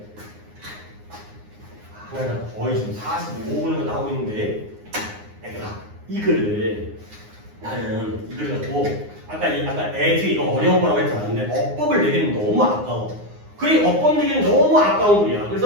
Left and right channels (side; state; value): left; late; 9.7 ms